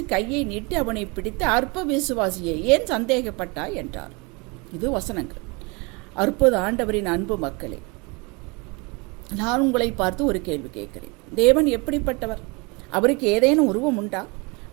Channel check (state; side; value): quieter; left; 28.6 dB